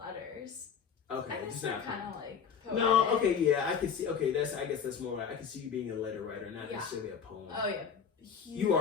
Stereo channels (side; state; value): right; quieter; 6.8 dB